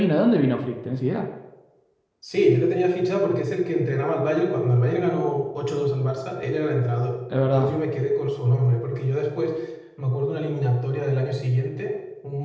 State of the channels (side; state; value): both; identical; correlation 1.00